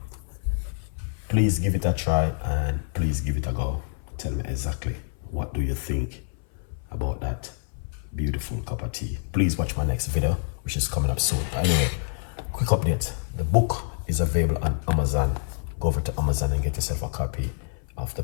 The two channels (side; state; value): right; silent; 59 dB below the other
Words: please give it a try and please give it a go. Tell me exactly what do you think about that beautiful cup of tea. Please watch my next video, which is coming up soon. Anyway, quick update. The book is available on Amazon. Go over to Amazon and get yourself a copy of the